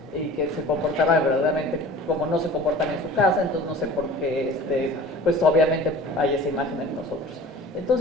y que se comportaban verdaderamente como no se comportan en su casa, entonces no sé por qué, pues obviamente hay esa imagen en nosotros.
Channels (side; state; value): both; normal; correlation 0.42